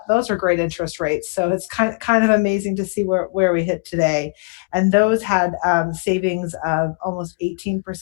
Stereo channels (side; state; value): right; quieter; 33.1 dB